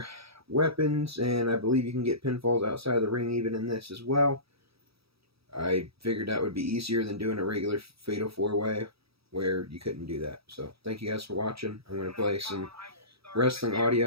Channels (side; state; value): left; late; 0.77 ms